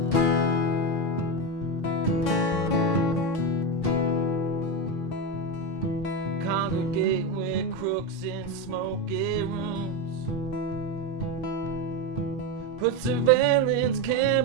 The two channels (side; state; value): both; normal; correlation 0.14